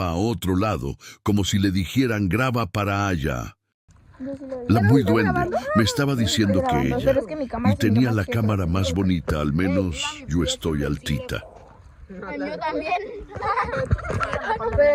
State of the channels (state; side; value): identical; both; correlation 1.00